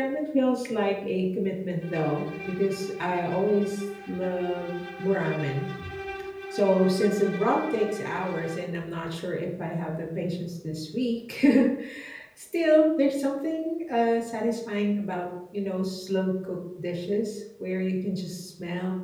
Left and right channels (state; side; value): identical; both; correlation 1.00